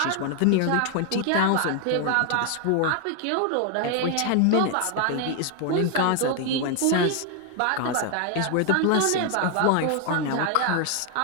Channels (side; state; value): both; different; correlation 0.00